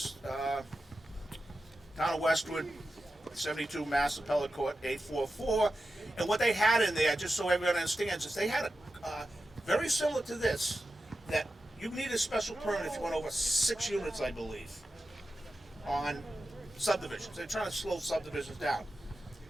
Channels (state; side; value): normal; both; correlation 0.92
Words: Town of Westwood, 72 Mass Appellate Court 844. And what they had in there, just so everyone understands, is they had a very similar to this, that you need a special permit if you went over 6 units, I believe, on subdivisions. They're trying to slow subdivisions down.